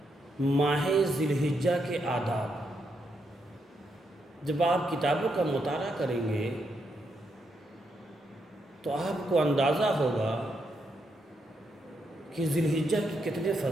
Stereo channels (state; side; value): normal; both; correlation 0.80